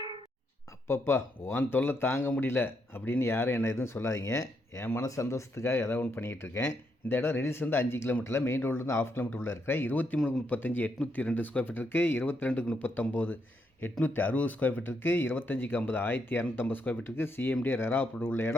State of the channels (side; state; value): both; normal; correlation 0.78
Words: அப்பப்பா உன் தொல்லை தாங்க முடியல அப்படின்னு யாரும் என்ன எதுவும் சொல்லாதீங்க. என் மன சந்தோஷத்துக்காக ஏதாவது ஒன்று பண்ணிக்கிட்டு இருக்கேன். இந்த இடம் ரெடில்ஸ் 5 கிலோமீட்டரில், மெயின் ரோட்லேருந்து 1/2 கிலோமீட்டர் உள்ள இருக்கிற 23-35 802 ஸ்கொயர் ஃபீட் இருக்குது. 22-39 860 ஸ்கொயர் ஃபீட் இருக்குது. 25-50 1250 ஸ்கொயர் ஃபீட் இருக்குது. சிஎம்டி ரெரா அப்ரூவ்ட் உள்ள